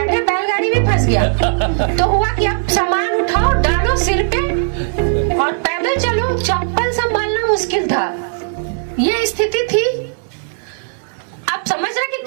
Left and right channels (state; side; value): silent; left; digital silence